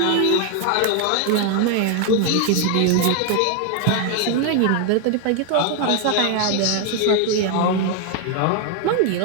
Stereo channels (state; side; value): different; both; correlation 0.00